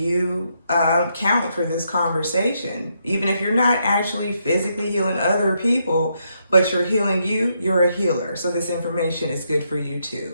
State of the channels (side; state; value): both; inverted; correlation -0.78